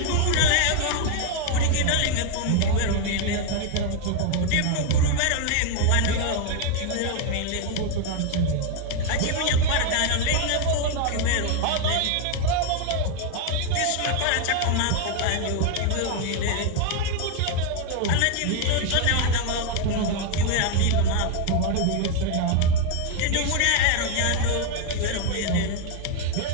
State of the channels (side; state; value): both; different; correlation 0.00